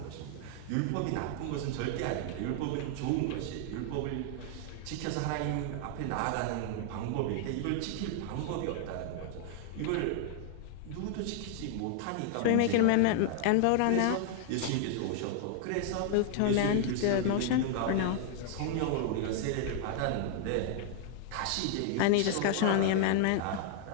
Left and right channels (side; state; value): both; different; correlation -0.01